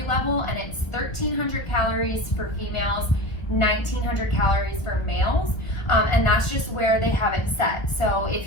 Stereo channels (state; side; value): late; right; 1.1 ms